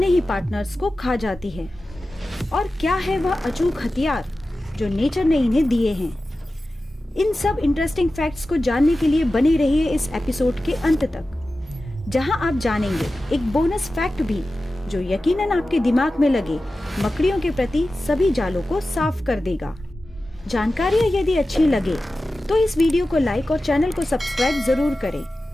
ही पार्टनर्स को खा जाती है? और क्या है वह अचूक हथियार जो नेचर ने इन्हें दिए हैं? इन सब इंटरेस्टिंग फैक्ट्स को जानने के लिए बने रहिए इस एपिसोड के अंत तक, जहां आप जानेंगे एक बोनस फैक्ट भी जो यकीनन आपके दिमाग में लगे मकड़ियों के प्रति सभी जालों को साफ कर देगा। जानकारी यदि अच्छी लगे तो इस वीडियो को लाइक और चैनल को सब्सक्राइब जरूर करें,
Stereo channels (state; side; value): normal; both; correlation 0.94